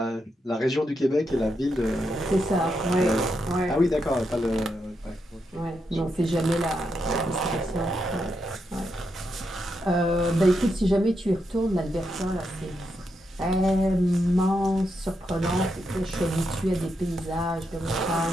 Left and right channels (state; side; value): normal; both; correlation 0.83